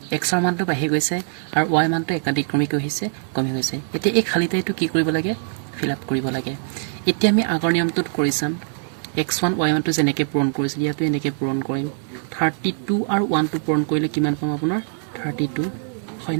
x ৰ মানটো বাঢ়ি গৈছে আৰু y মানটো একাধিক্ৰমিক হৈছে কমি গৈছে এতিয়া এই খালি ঠাইটো কি কৰিব লাগে ফিল আপ কৰিব লাগে এতিয়া আমি আগৰ নিয়মটোত কৰিছাম x1 y1 টো যেনেকৈ পূৰণ কৰিছিল ইয়াতো এনেকৈ পূৰণ কৰিম 32 আৰু 1 টো পূৰণ কৰিলে কিমান পাম আপোনাৰ 32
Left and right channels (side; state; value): left; silent; 60 dB below the other